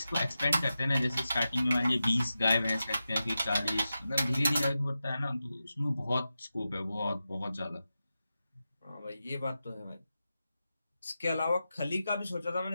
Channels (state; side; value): inverted; both; correlation -0.92